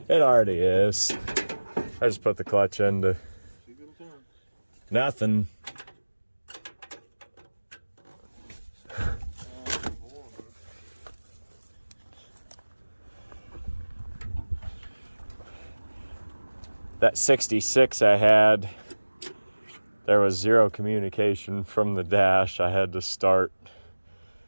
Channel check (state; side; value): inverted; both; correlation -1.00